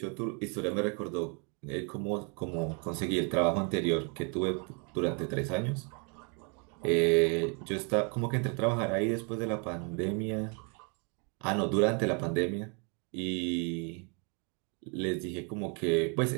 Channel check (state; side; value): quieter; left; 35.7 dB